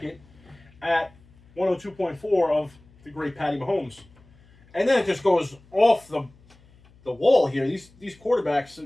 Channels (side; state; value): left; noise; hum, 28 dB below the sound